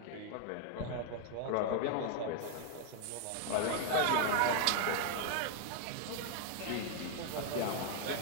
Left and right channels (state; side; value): different; both; correlation 0.00